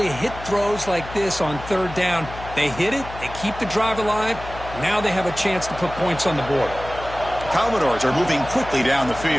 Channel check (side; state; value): left; noise; hum, 13 dB below the sound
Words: to hit throws like this on third down. They hit it, they keep the drive alive. Now they have a chance to put points on the board. The Commodores are moving quickly down the